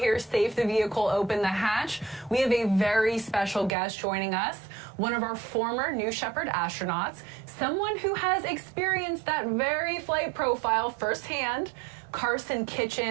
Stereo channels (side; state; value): left; drops out; at 3.7 s